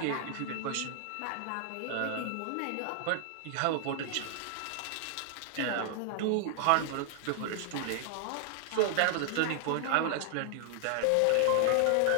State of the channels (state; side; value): different; both; correlation 0.00